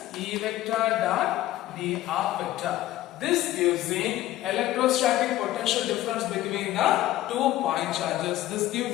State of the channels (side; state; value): right; quieter; 14.9 dB